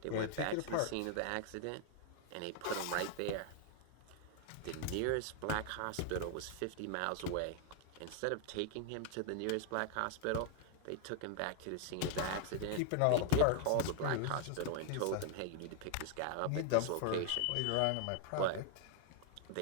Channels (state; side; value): different; both; correlation 0.00